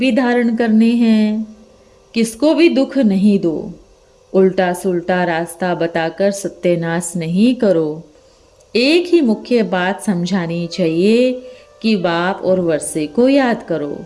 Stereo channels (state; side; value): identical; both; correlation 1.00